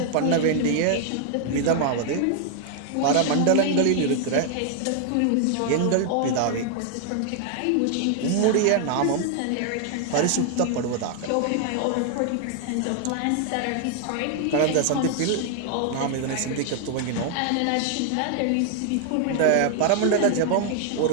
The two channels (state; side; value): different; both; correlation 0.00